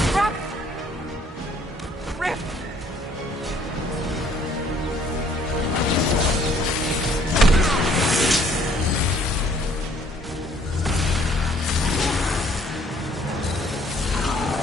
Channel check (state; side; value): normal; both; correlation 0.61